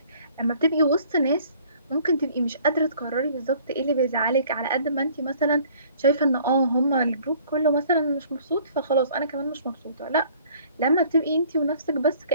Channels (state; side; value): inverted; both; correlation -0.55